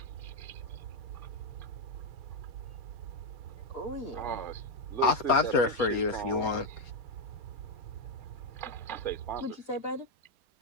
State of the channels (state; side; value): late; left; 4.3 ms